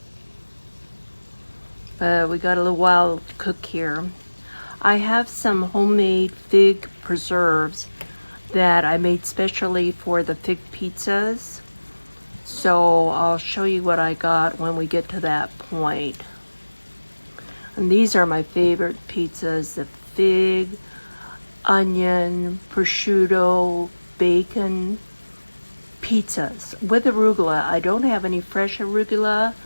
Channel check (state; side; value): inverted; both; correlation -1.00